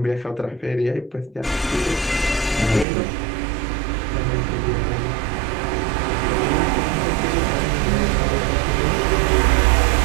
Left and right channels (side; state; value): left; drops out; at 2.9 s